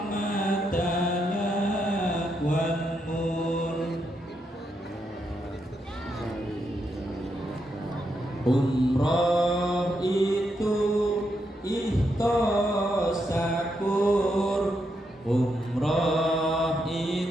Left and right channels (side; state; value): both; normal; correlation 0.81